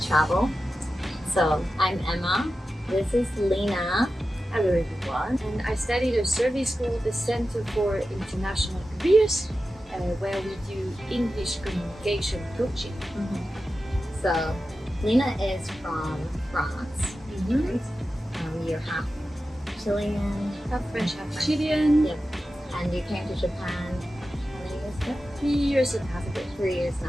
So I'm Emma. This is Lina. Hello everyone. And I studied a service called the Center for International Careers, where we do English communication coaching. So Lina is from France. Right? You're half Chilean. Half French, half Chilean. Yep. And you came to Japan how many years ago? 3 years and a half ago. 3 years and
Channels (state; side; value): normal; both; correlation 0.93